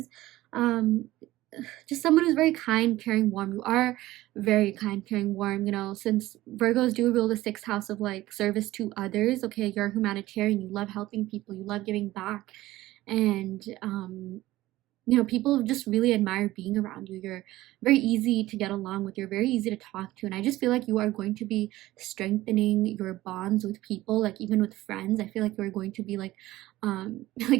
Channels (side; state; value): left; quieter; 16.7 dB